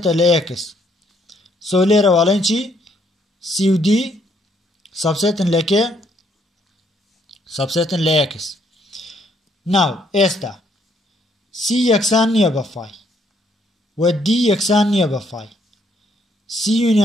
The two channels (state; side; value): normal; both; correlation 0.69